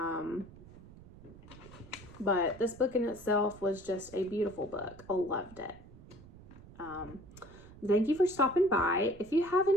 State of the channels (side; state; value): right; noise; rumble, 19 dB below the sound